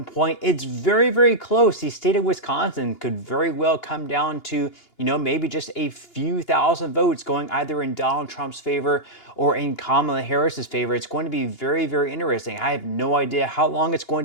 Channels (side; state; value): right; late; 2.8 ms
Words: point. It's very, very close. The state of Wisconsin could very well come down to, maybe just a few thousand votes going either in Donald Trump's favor or in Kamala Harris's favor. It's going to be very, very interesting. I have no idea how long it's going